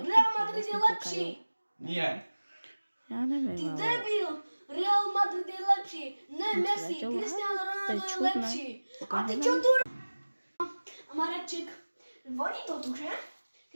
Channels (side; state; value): both; inverted; correlation -1.00